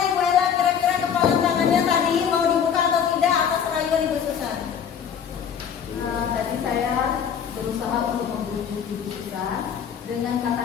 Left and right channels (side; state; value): right; quieter; 7.8 dB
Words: Tadi saya berusaha untuk membujuk Ibu Susan dengan